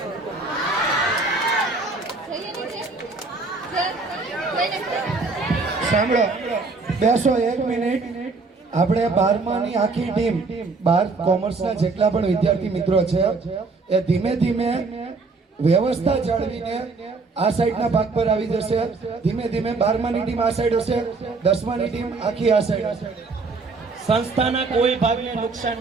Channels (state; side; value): quieter; left; 4.0 dB